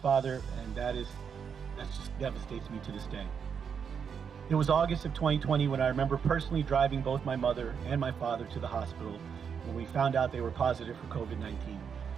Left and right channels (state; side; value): quieter; left; 6.9 dB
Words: and that just devastates me to this day. It was August of 2020 when I remember personally driving both my mother and my father to the hospital when we found out they were positive for COVID-19